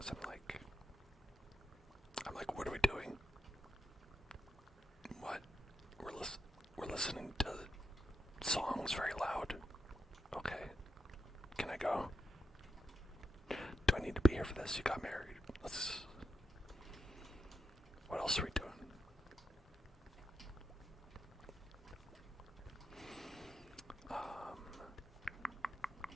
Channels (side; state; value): both; normal; correlation 0.86